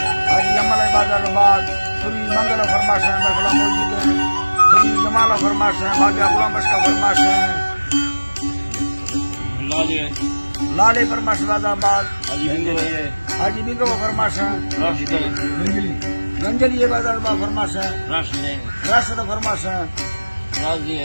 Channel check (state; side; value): inverted; both; correlation -1.00